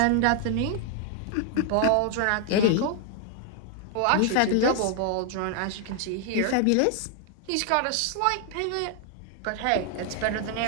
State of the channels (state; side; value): different; both; correlation 0.00